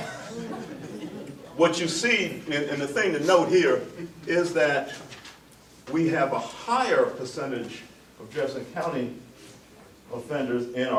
what you see, and the thing to note here, is that we have a higher percentage of Jefferson County offenders in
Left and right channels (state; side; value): identical; both; correlation 1.00